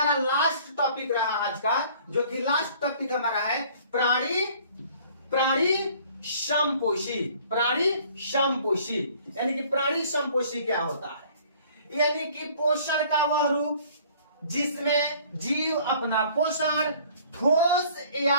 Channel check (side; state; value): both; inverted; correlation -0.54